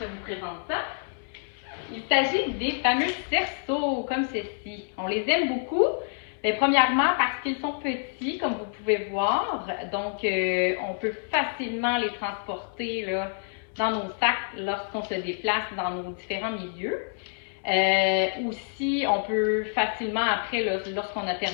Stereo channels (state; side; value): silent; right; 60 dB below the other